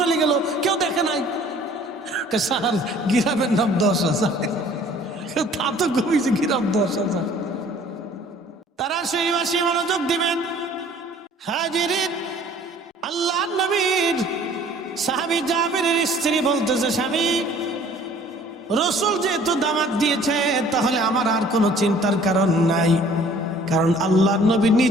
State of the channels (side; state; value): both; normal; correlation 0.53